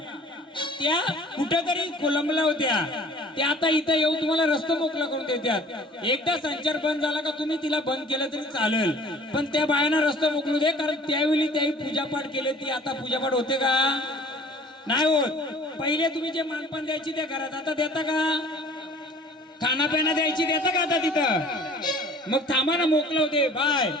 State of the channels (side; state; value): both; normal; correlation 0.49